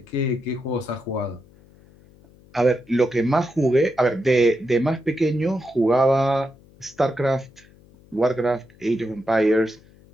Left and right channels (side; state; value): left; noise; hum, 27 dB below the sound